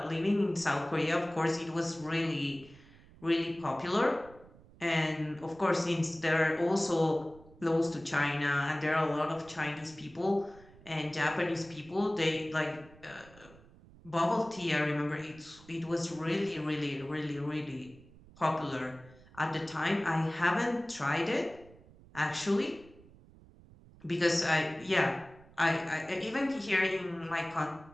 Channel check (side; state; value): right; noise; rumble, 23 dB below the sound